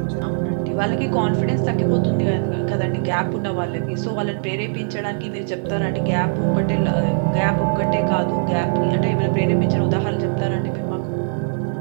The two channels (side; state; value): left; silent; 58 dB below the other